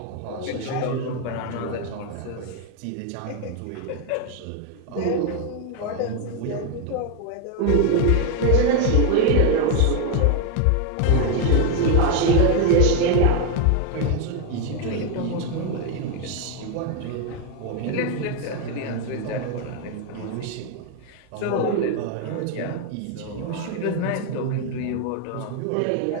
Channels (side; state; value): both; different; correlation 0.01